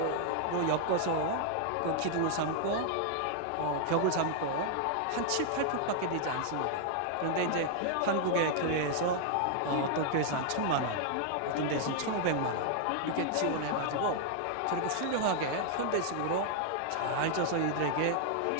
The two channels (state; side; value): different; both; correlation 0.00